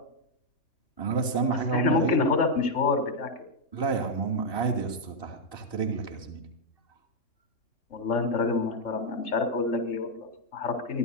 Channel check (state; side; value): late; right; 2.7 ms